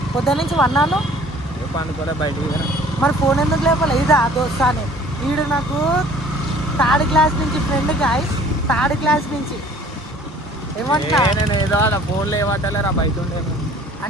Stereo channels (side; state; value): both; normal; correlation 0.52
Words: పొద్దున్న నుంచి వన్నాను. పండుకోలే బయటికి. మరి ఫోన్ ఎందుకు లేపాలి? ఇదా దోస్తా అని. వీడు నాకు 3rd క్లాస్ నుంచి ఫ్రెండ్, గాయస్ 3rd క్లాస్ నుంచి. ఏమంటా నేను ఏదో ఫోన్లో ఏమంటలేరా బయట ఉండేది